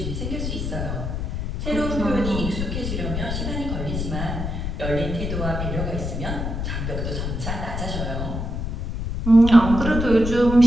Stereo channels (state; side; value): noise; left; rumble, 3 dB below the sound